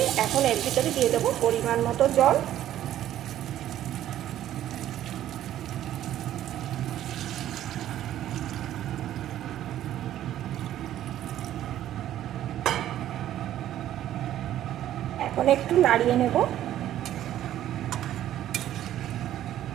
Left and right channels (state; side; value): quieter; left; 12.3 dB